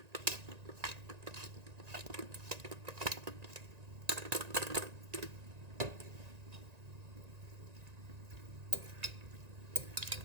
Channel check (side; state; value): left; late; 1.9 ms